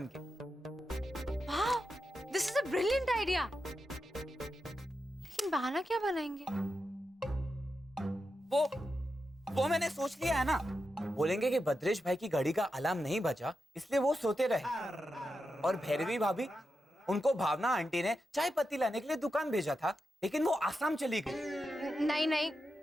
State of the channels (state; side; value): normal; both; correlation 0.88